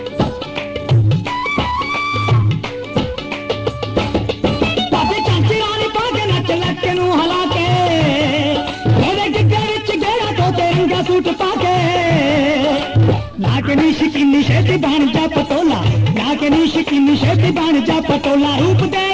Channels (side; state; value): both; identical; correlation 1.00